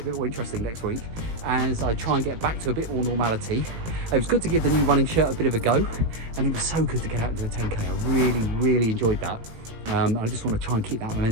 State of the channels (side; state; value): left; late; 18 ms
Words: a bit more interesting next week as I try and get back to a bit more normality. It was good to give the new running shirt a bit of a go, and it was so good to get out and do a 10k. I really enjoyed that. I just want to try and keep that